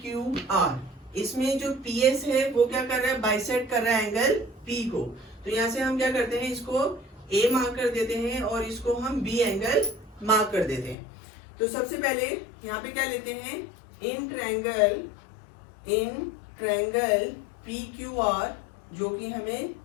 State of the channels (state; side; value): drops out; right; at 11.0 s